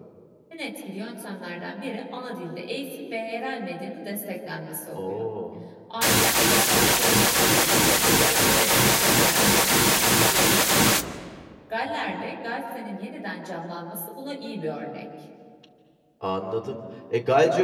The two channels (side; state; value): both; identical; correlation 1.00